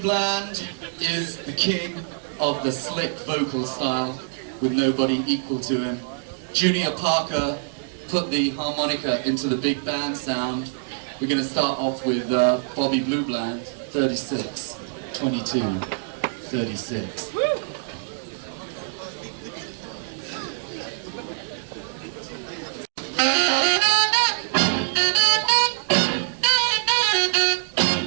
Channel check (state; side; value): silent; left; digital silence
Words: is the king of the slick vocal style with nobody equal to him. Junior Parker put the harmonica into the big band sound. We're going to start off with Bobby Blue Bland, 36, 22, 36.